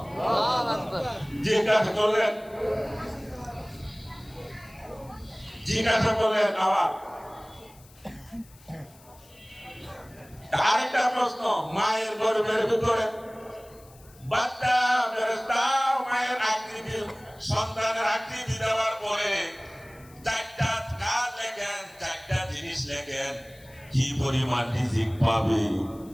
জিজ্ঞাসা করলেন, জিজ্ঞাসা করলেন আবার আরেকটা প্রশ্ন, মায়ের গর্ভের ভিতরে বাচ্চা ফেরেশতা মায়ের আকৃতি, সন্তানের আকৃতি দেওয়ার পরে চারটা কাজ লেখেন, চারটা জিনিস লেখেন, কি পরিমাণ রিজিক পাবে,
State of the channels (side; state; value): left; noise; hiss, 26 dB below the sound